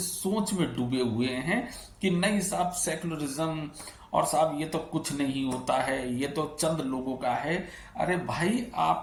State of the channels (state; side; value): identical; both; correlation 1.00